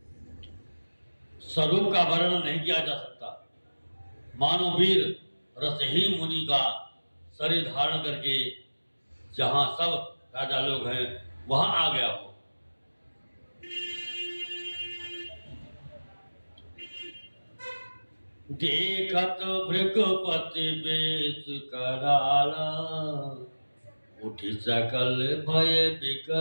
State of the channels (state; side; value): inverted; both; correlation -1.00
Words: स्वरूप का वर्णन नहीं किया जा सकता। मानो वीर रस ही मुनि का शरीर धारण करके जहां सब राजा लोग हैं वहां आ गया हो। देखत भृगपति बेश कराला, उठी सकल भय